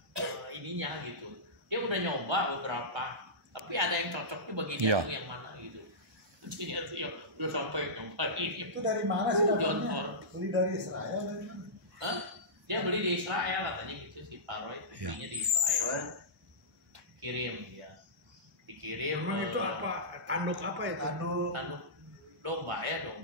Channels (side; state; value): both; normal; correlation -0.17